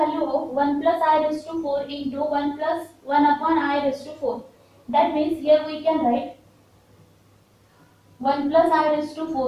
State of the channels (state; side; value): identical; both; correlation 1.00